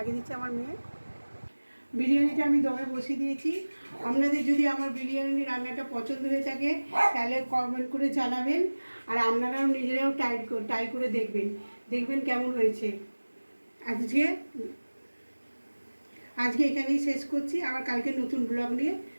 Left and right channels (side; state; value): both; inverted; correlation -1.00